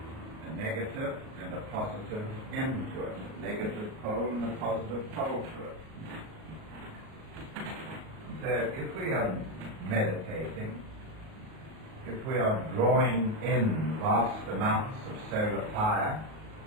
a negative and a positive end to it, a negative pole and a positive pole to it. So if we are meditating, if we are drawing in vast amounts of solar fire,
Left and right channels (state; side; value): late; left; 38 ms